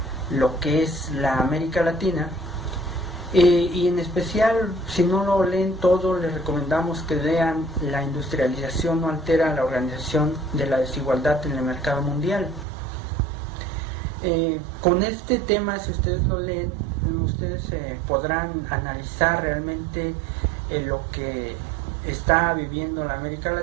lo que es la América Latina. Y en especial, si no lo leen todo, les recomendamos que lean La industrialización no altera la organización de la desigualdad en el mercado mundial. Con este tema, si ustedes lo leen, ustedes podrán analizar realmente lo que está viviendo la América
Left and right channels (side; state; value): left; drops out; at 12.7 s